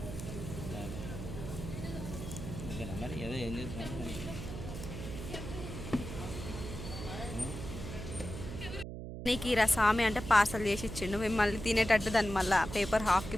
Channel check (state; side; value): noise; right; hum, 8 dB below the sound